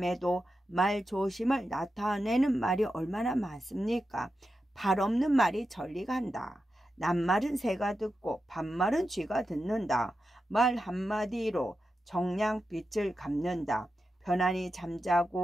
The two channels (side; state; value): both; normal; correlation 0.89